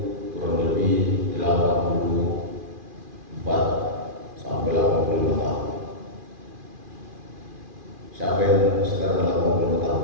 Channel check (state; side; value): late; left; 2.4 ms